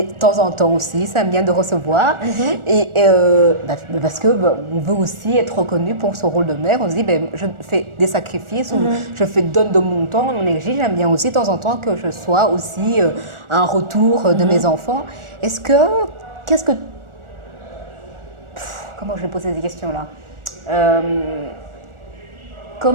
de temps en temps aussi, ça aime bien de recevoir. Et parce que on veut aussi être reconnu pour son rôle de mère. On se dit, je fais des sacrifices ou je donne de mon temps, de mon énergie. J'aime bien aussi de temps en temps que je sois aussi un retour de mes enfants. Comment je vais poser ces questions-là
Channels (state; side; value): late; left; 1.4 ms